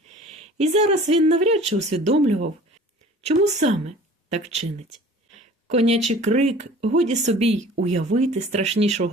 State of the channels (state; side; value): normal; both; correlation 0.46